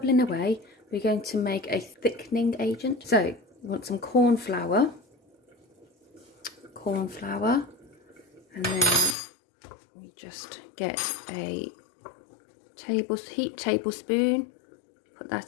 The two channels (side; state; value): right; drops out; at 9.2 s